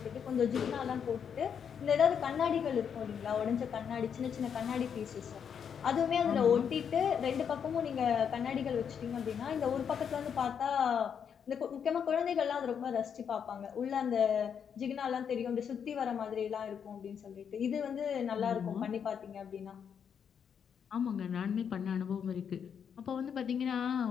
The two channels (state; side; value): quieter; right; 7.5 dB